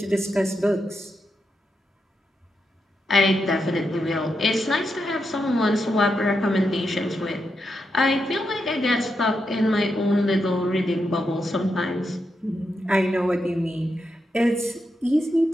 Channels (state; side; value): normal; both; correlation 0.85